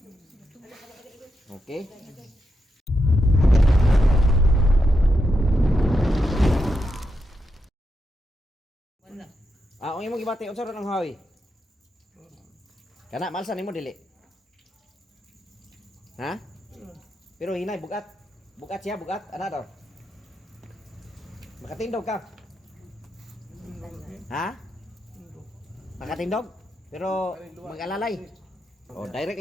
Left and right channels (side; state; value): both; normal; correlation 0.85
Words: Okay. Ang imong gibati unsa ra ng hawi? Kana malsan nimo dili. Ha? Pero hinay bugat. Bugat siya, bugat. Ana daw? Makatindog ka? Ha? Makatindog? Pero mag-alalay. Oh, direct